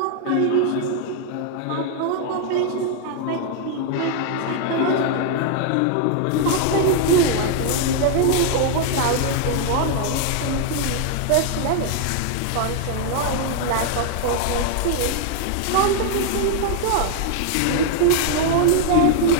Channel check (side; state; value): both; different; correlation 0.00